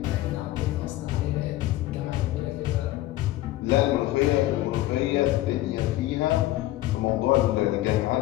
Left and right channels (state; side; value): quieter; right; 16.0 dB